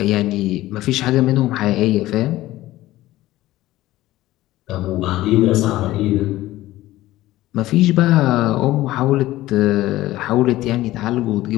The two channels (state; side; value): quieter; right; 16.3 dB